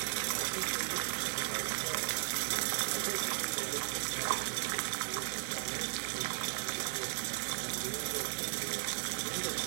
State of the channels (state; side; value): silent; left; digital silence